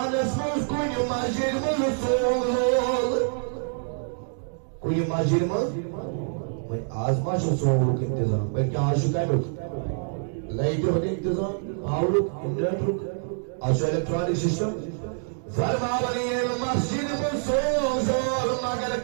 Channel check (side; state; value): left; silent; digital silence